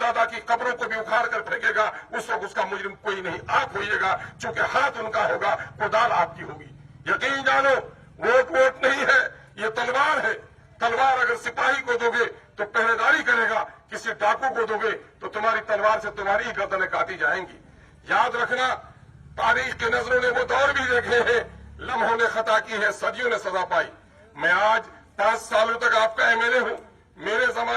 की कब्रों को भी उखाड़ कर फेंकेगा। उस वक्त उसका मुजरिम कोई नहीं, आप होइएगा, चूंकि हाथ उनका होगा, कुदाल आपकी होगी। यकीन जानो, वोट नहीं है, ये तलवार है। तलवार अगर सिपाही को दोगे तो पहरेदारी करेगा, किसी डाकू को दोगे तो तुम्हारी तलवार से तुम्हारी ही गर्दनें काटी जाएंगी। याद रखना, तारीख के नजरों ने वो दौर भी देखे हैं, लम्हों ने खता की है, सदियों ने सजा पाई। मैं आज 5 सालों तक आपका एमएलए हूं। मेरे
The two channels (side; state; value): both; identical; correlation 1.00